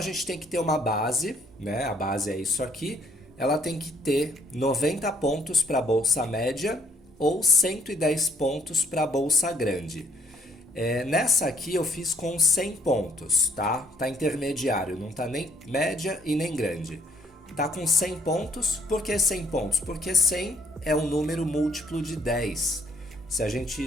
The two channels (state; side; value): normal; both; correlation 0.64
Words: gente tem que ter uma base, né? A base é isso aqui. Ela tem que ter 90 pontos para a bolsa média ou 110 pontos para a bolsa grande. Nessa aqui eu fiz com 100 pontos, tá? Tá intermediário, não tá nem média e nem grande. Tá com 100 pontos, por que 100 pontos? Porque 100 é um número múltiplo de 10. Se a gente